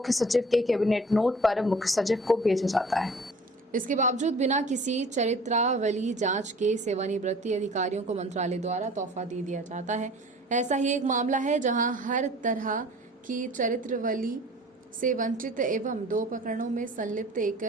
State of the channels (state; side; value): normal; both; correlation 0.47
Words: सचिव के कैबिनेट नोट पर मुख्य सचिव को भेजा जाता है। इसके बावजूद बिना किसी चरित्रावली जांच के सेवानिवृत्ति अधिकारियों को मंत्रालय द्वारा तोहफा दे दिया जाता है। ऐसा ही एक मामला है जहां हर तरह की चरित्रावली से वंचित एवं 2 प्रकरणों में संलिप्त